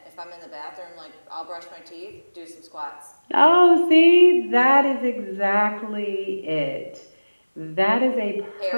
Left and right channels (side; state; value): both; inverted; correlation -1.00